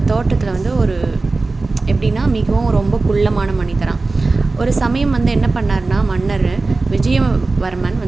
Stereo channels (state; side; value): quieter; left; 3.5 dB